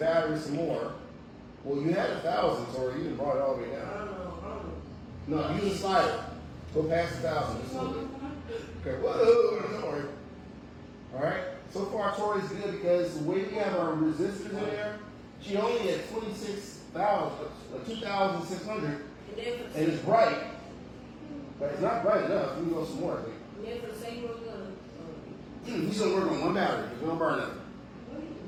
some more. Well, you had 1,000, or you didn't brought it all the way down. No, use a slider. Go past 1,000. Okay, whoa, don't worry. All right. So far, Tori's good because the way we have our resistors in there, she only had 26,000, 2,600, and it's bright, but it's not bright enough. We can go some more. I think. Yeah, for the same one, He's gonna work on one battery. He's gonna burn it.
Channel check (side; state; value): both; identical; correlation 1.00